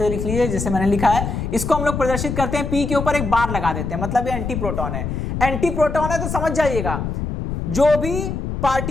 लिख लीजिए जैसे मैंने लिखा है। इसको हम लोग प्रदर्शित करते हैं, पी के ऊपर एक बार लगा देते हैं, मतलब ये एंटी प्रोटॉन है। एंटी प्रोटॉन है तो समझ जाइएगा, जो भी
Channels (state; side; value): noise; left; rumble, 4 dB below the sound